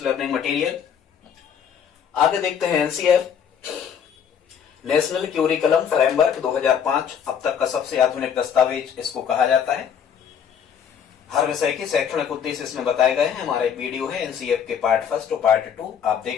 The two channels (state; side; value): quieter; right; 7.9 dB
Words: लर्निंग मटेरियल। आगे देखते हैं NCF नेशनल क्यूरिकुलम फ्रेमवर्क 2005, अब तक का सबसे आधुनिक दस्तावेज इसको कहा जाता है। हर विषय के शैक्षणिक उद्देश्य इसमें बताए गए हैं। हमारा एक वीडियो है NCF के पार्ट 1 और पार्ट 2, आप